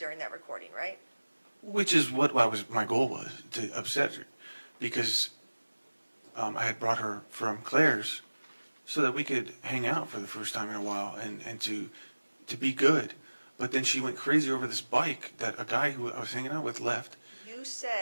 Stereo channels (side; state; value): both; inverted; correlation -1.00